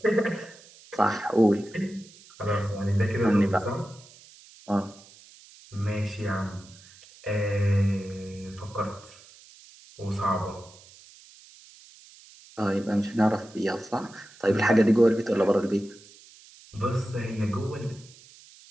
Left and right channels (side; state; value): right; noise; hiss, 23 dB below the sound